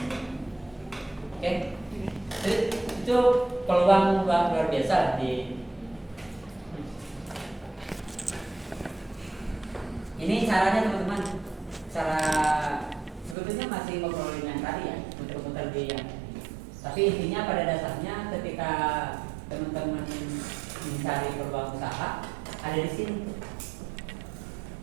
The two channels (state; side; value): drops out; left; at 13.4 s